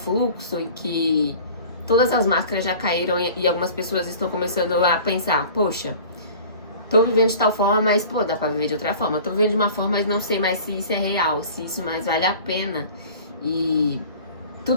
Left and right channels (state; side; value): inverted; both; correlation -0.43